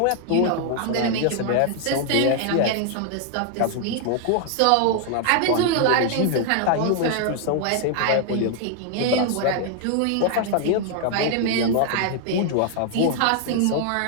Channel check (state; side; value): different; both; correlation 0.00